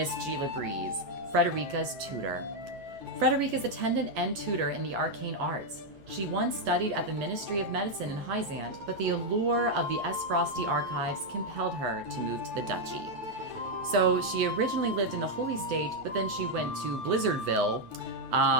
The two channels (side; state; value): left; late; 9.3 ms